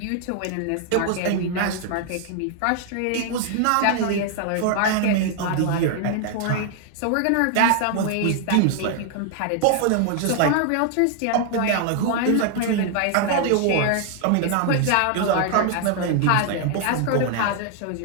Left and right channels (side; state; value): both; different; correlation 0.00